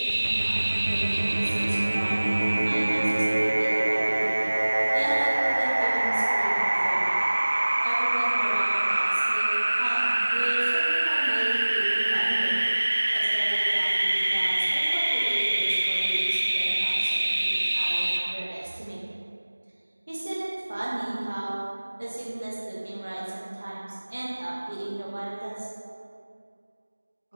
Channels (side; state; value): both; inverted; correlation -1.00